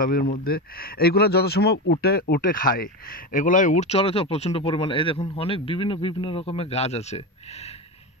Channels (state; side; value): normal; both; correlation 0.19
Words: মধ্যে এইগুলো যত সময় উঠে উঠে খায়, এগুলাই উঠ চলে তো প্রচণ্ড পরিমাণে। এই দেখুন অনেক বিভিন্ন বিভিন্ন রকমের গাছ আছে,